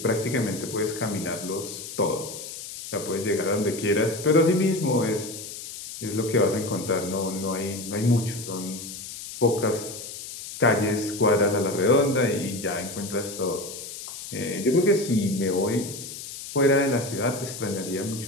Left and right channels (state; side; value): noise; left; hiss, 10 dB below the sound